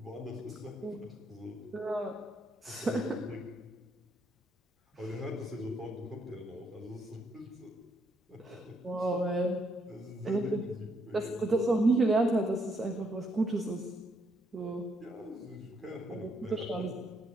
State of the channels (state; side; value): normal; both; correlation 0.74